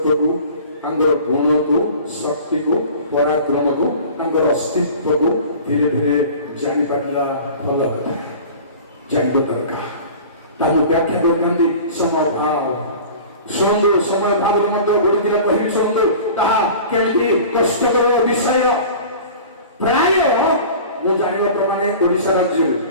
ତାଙ୍କର ଗୁଣକୁ, ଶକ୍ତିକୁ, ପରାକ୍ରମକୁ, ତାଙ୍କର ଅସ୍ତିତ୍ୱକୁ ଧୀରେ ଧୀରେ ଜାଣିପାରିଲା ଭଲ କଥା, ଜାଣିବା ଦରକାର। ତାକୁ ବ୍ୟାଖ୍ୟା କରିଥାନ୍ତି ସମୟ ଭାବ। ଶୁଣନ୍ତୁ, ସମୟ ଭାବରେ ମଧ୍ୟ ଗୋଟେ ଦିନ କହିବି ଶୁଣନ୍ତୁ, ତାହା କେମିତି କଷ୍ଟକର ବିଷୟ। ପ୍ରାୟ ମୁଁ ଜାଣିବା ପ୍ରମାଣେ ଓଡ଼ିଶା ରାଜ୍ୟରେ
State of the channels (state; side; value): inverted; both; correlation -0.40